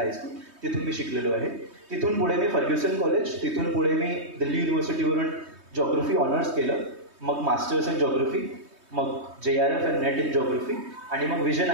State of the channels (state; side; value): late; left; 3.2 ms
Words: तिथून मी शिकलेलो आहे. तिथून पुढे मी फर्ग्युसन कॉलेज, तिथून पुढे मी दिल्ली युनिव्हर्सिटीवरून जॉग्रफी ऑनर्स केलं, मग मास्टर्स इन जॉग्रफी, मग JRF and net in geography आणि मग विजन